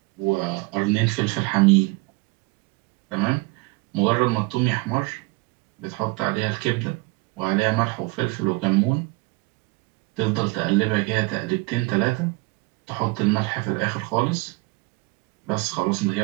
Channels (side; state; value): left; quieter; 25.8 dB